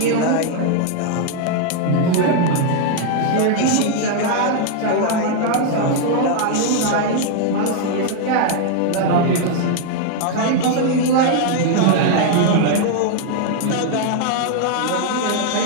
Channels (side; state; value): both; different; correlation 0.00